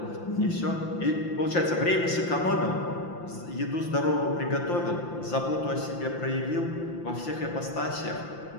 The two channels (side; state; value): right; late; 5.8 ms